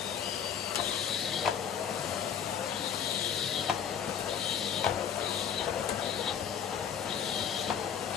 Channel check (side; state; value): right; quieter; 8.1 dB